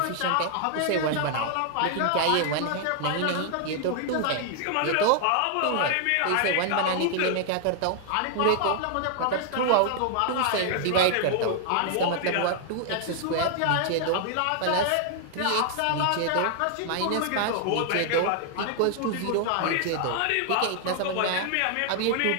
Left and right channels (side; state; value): both; different; correlation 0.00